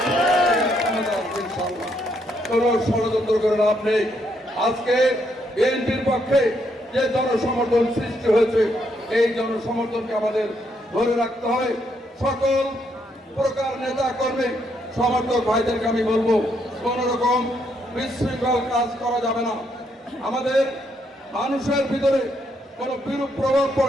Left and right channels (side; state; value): both; normal; correlation 0.75